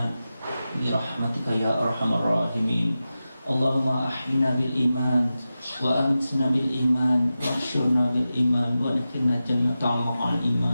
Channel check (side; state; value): both; inverted; correlation -0.93